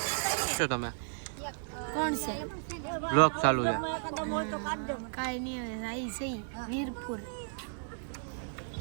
શું તમે કોણ છે બ્લોગ ચાલુ છે? કાંઈ નહીં આવી જઈ વીરપુર.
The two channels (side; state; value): left; silent; digital silence